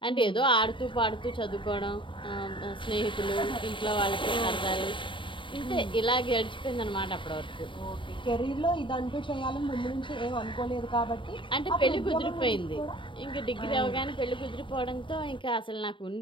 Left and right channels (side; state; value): right; late; 0.24 ms